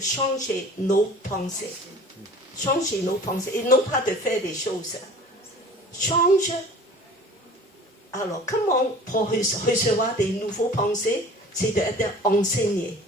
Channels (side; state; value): both; normal; correlation 0.44